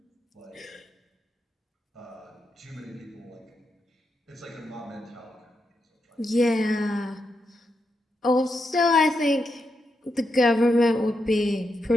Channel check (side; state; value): both; normal; correlation 0.84